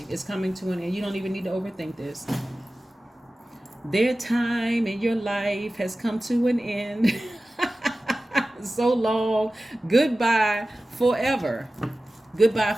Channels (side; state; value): both; normal; correlation 0.96